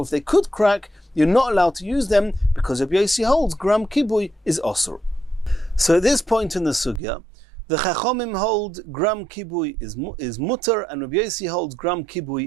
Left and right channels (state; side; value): drops out; left; at 7.0 s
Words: if they could crack, you're not allowed to use them because Rabbi Yossi holds gram kibui is osur. So at this point in the sugya, the Chachamim hold gram kibui is mutter, and Rabbi Yossi holds gram